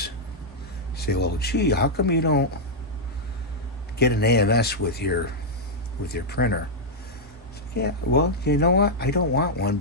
say, well, gee, how come you don't get an AMS with your printer? Yeah, well, you know what? I don't want one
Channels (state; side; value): normal; both; correlation -0.05